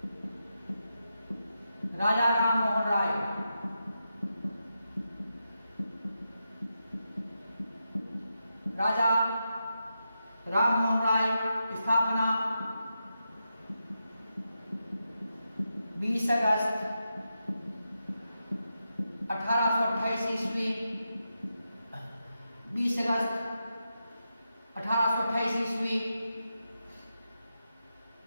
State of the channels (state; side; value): inverted; both; correlation -0.87